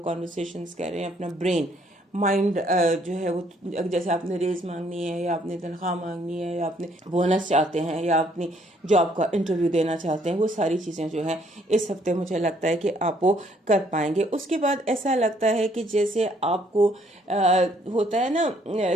کانورسیشنز کر رہے ہیں، اپنا برین مائنڈ جو ہے وہ، جیسے آپ نے ریز مانگنی ہے، یا آپ نے تنخواہ مانگنی ہے، یا آپ نے بونس چاہتے ہیں، یا اپنی جاب کا انٹرویو دینا چاہتے ہیں، وہ ساری چیزیں جو ہیں اس ہفتے مجھے لگتا ہے کہ آپ وہ کر پائیں گے۔ اس کے بعد ایسا لگتا ہے کہ جیسے آپ کو ہوتا ہے نا،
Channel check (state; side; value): normal; both; correlation 0.66